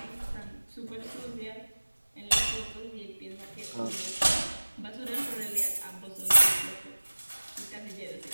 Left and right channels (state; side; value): inverted; both; correlation -1.00